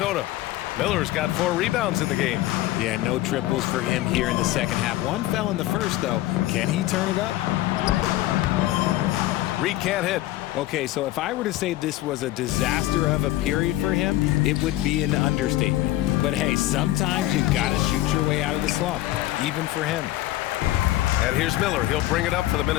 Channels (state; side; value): quieter; right; 15.7 dB